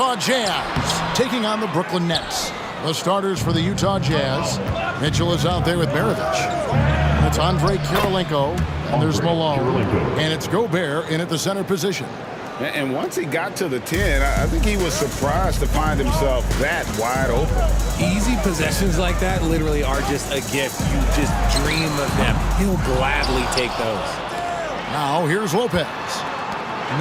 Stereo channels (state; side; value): identical; both; correlation 1.00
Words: Jazz taking on the Brooklyn Nets. The starters for the Utah Jazz. Mitchell is out there with Maravich. That's Andre Kirilenko, and there's Malone, and it's Gobert in at the center position. And once he got to the 10, I think he was surprised to find himself that wide open. Easy possessions like that literally are just a gift. You just dream of them. He'll gladly take those. Now here's Lopez.